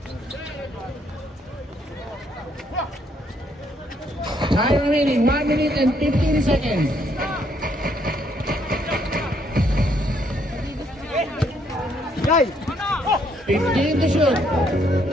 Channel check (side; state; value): both; normal; correlation 0.70